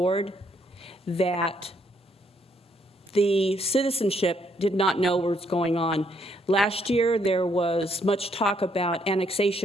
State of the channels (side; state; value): both; normal; correlation 0.72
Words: that the citizenship did not know what was going on. Last year, there was much talk about